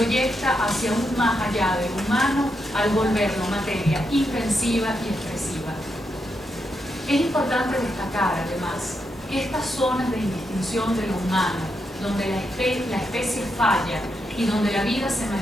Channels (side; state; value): both; normal; correlation 0.83